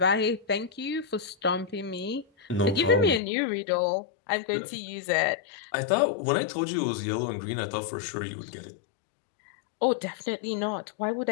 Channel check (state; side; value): drops out; right; at 3.2 s